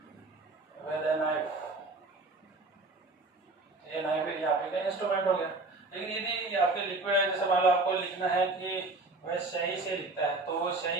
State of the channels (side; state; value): left; quieter; 3.2 dB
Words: with a knife, ये नाइफ यहाँ पे का इंस्ट्रूमेंट हो गया। लेकिन यदि आपके लिक्विड है, जैसे मान लो आपको लिखना है कि वह सही से लिखता है, तो वो सही